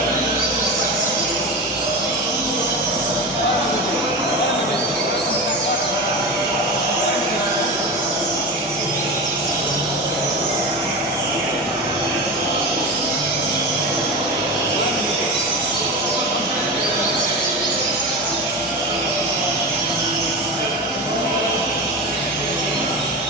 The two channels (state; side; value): normal; both; correlation 0.25